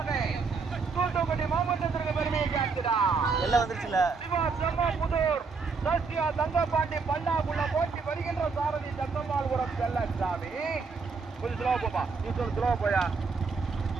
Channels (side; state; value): left; quieter; 4.8 dB